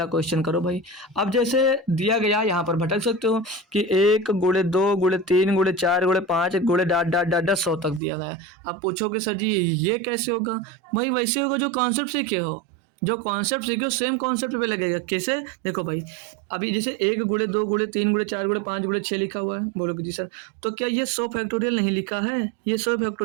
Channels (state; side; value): drops out; left; at 8.0 s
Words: क्वेश्चन करो भाई। अब जैसे दिया गया यहाँ पर भटक सकते हो कि 1 गुणे 2 गुणे 3 गुणे 4 गुणे 5 गुणे डाट डाट डाट डाट 100 तक दिया गया। अब पूछोगे सर जी ये कैसे होगा? भाई वैसे होगा जो कॉन्सेप्ट सीखे हो, जो कॉन्सेप्ट सीखे हो सेम कॉन्सेप्ट पे लगेगा। कैसे? देखो भाई अभी जैसे 1 गुणे 2 गुणे 3 गुणे 4 गुणे 5 गुणे 6 लिखा हुआ है, बोलोगे जी सर तो क्या ये 100 फैक्टोरियल नहीं लिखा है? ये 100